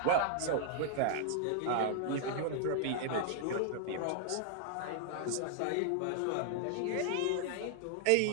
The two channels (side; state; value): both; different; correlation 0.00